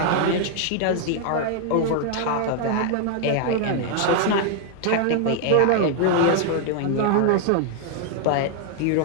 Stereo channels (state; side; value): different; both; correlation 0.00